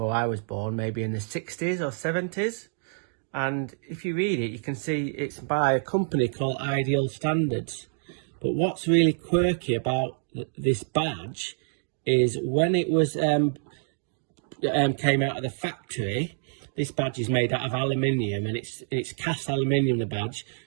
I was born, maybe in the 60s or 70s. And if you read it, you can see it's by a company called Ideal Standards. But what's really quirky about this badge is when it was came out of the factory, this badge is made out of aluminium, and it's cast aluminium, the badge,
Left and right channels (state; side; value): silent; left; digital silence